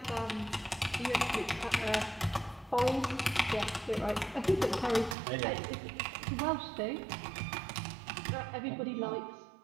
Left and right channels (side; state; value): left; drops out; at 5.2 s